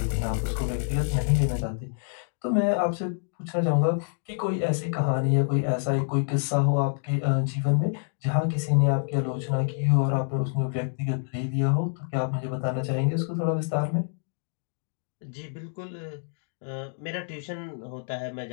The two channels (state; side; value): silent; right; digital silence